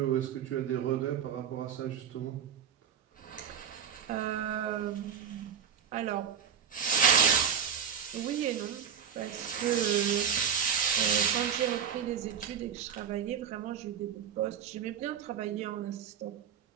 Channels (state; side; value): quieter; left; 7.7 dB